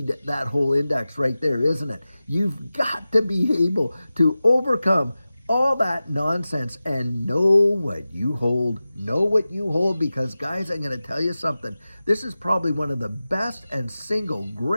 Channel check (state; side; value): inverted; both; correlation -0.95